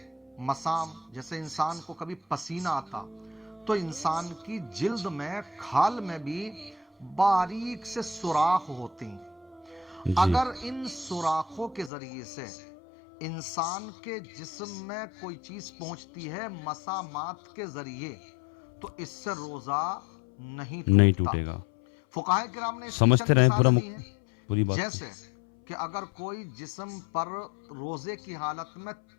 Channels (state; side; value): drops out; right; at 11.9 s